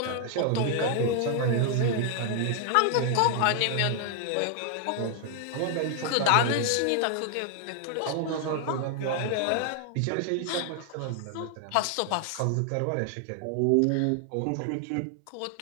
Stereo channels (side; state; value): both; different; correlation 0.00